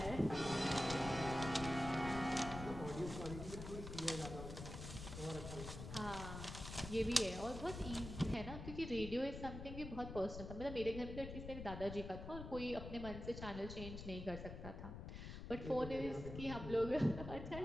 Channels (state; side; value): noise; left; rumble, 8 dB below the sound